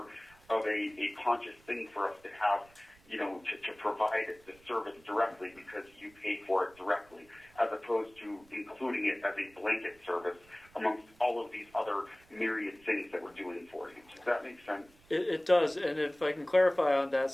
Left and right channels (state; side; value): noise; right; rumble, 28 dB below the sound